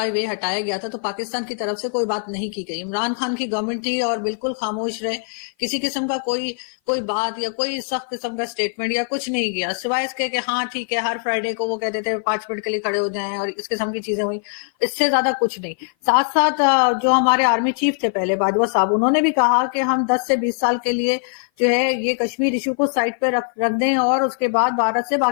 ہٹایا گیا تھا تو پاکستان کی طرف سے کوئی بات نہیں کی گئی. عمران خان کی گورنمنٹ تھی اور بالکل خاموش رہے، کسی قسم کا کوئی بات یا کوئی سخت قسم کا سٹیٹمنٹ یا کچھ نہیں کیا، سوائے اس کے کہ ہاں ٹھیک ہے ہر فرائیڈے کو وہ کہتے تھے 5 منٹ کے لیے کھڑے ہو جائیں اور اس قسم کی چیزیں ہوئی. اس سے زیادہ کچھ نہیں. ساتھ ساتھ جو ہمارے آرمی چیف تھے پہلے باجوہ صاحب، انہوں نے بھی کہا کہ ہم 10 سے 20 سال کے لیے جو ہے یہ کشمیر ایشو کو سائڈ پہ رکھ دیں اور اس کے بعد بھارت سے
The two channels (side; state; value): right; silent; 56 dB below the other